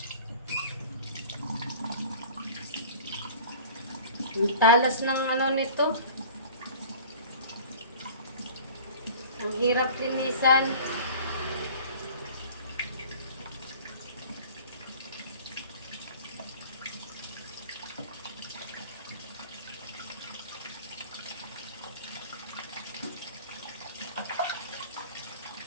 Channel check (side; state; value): both; inverted; correlation -0.43